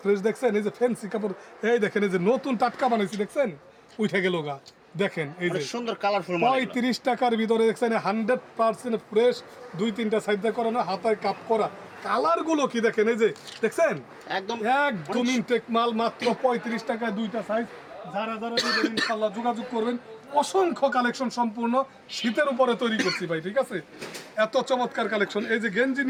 ফ্রেশ। দেখছেন এই যে ফ্যান্সি কাপড়, এই দেখেন এই যে নতুন টাটকা বানাইছি, দেখছেন উঠে গেল গা। দেখেন এই যে সুন্দর কালারফুল 35 টাকার ভিতরে দেখছেন 100% ফ্রেশ, 2-3টা সাইডে করানো, হাতায় কাপ করা। কালার গুলো কি দেখেন, এই যে দেখছেন একদম একদম ইনটেক মাল, মাত্র 35 টাকায় 2টা সাইজ। যারা যারা নেবেন ইনশাআল্লাহ যোগাযোগ করবেন। অসংখ্য কালেকশন, সম্পূর্ণ শীতের উপরে তৈরি করছি ভাই, ঠিক আছে? এত চমৎকার কালেকশন। এই যে গেঞ্জি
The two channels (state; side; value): identical; both; correlation 1.00